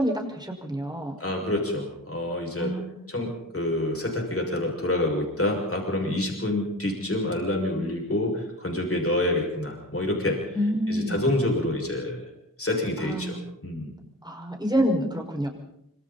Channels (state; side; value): normal; both; correlation 0.35